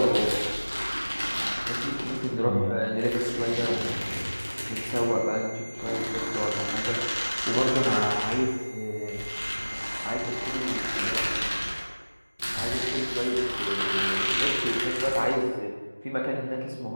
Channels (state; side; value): inverted; both; correlation -1.00